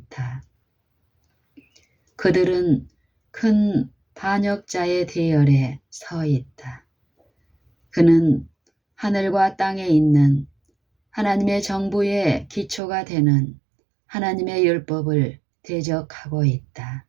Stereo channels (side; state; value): left; drops out; at 12.8 s